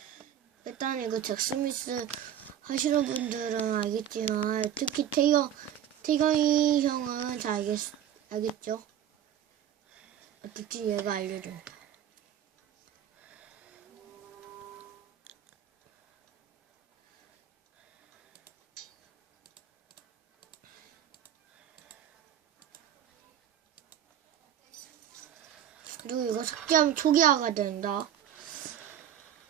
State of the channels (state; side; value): quieter; left; 10.1 dB